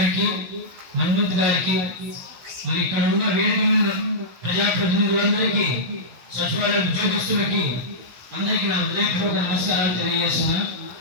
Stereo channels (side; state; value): left; late; 17 ms